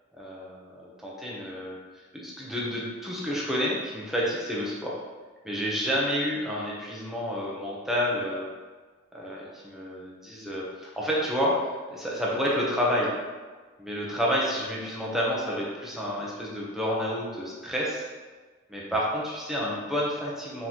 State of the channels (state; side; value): normal; both; correlation 0.30